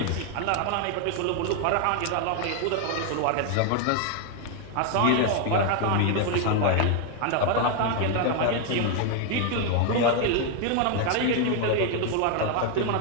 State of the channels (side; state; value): both; different; correlation 0.01